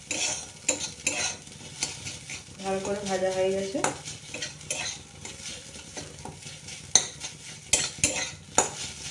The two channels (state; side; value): identical; both; correlation 1.00